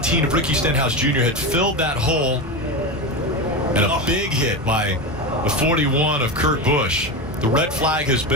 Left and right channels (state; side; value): normal; both; correlation 0.19